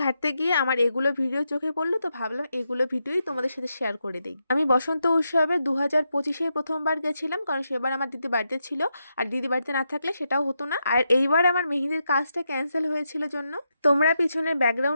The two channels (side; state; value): both; inverted; correlation -0.85